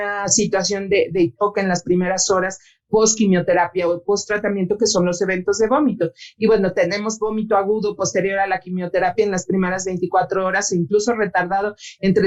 situación de hipoca en las primeras horas post-quimioterapia o post-tratamiento, que son los eventos de vómito. Y bueno, tenemos vómito agudo posterior a la quimioterapia en las primeras 24 horas, e incluso retardado entre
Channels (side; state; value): both; identical; correlation 1.00